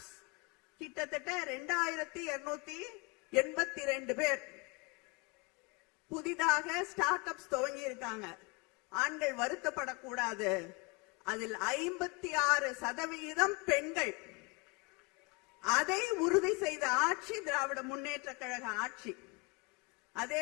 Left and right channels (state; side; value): quieter; right; 28.7 dB